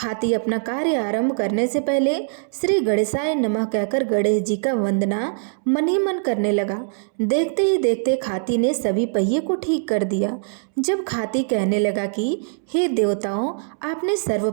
अपना कार्य आरंभ करने से पहले श्री गणेशाय नमः कहकर गणेश जी का वंदना मन ही मन करने लगा। देखते ही देखते खाती ने सभी पहिए को ठीक कर दिया। जब खाती कहने लगा कि हे देवताओं, आपने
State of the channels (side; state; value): left; silent; 64 dB below the other